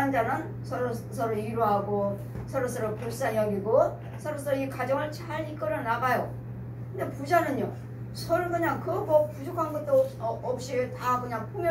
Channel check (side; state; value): both; identical; correlation 1.00